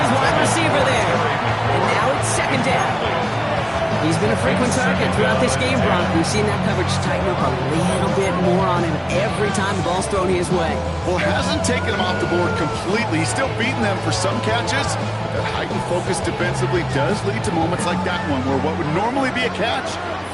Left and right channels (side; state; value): both; identical; correlation 1.00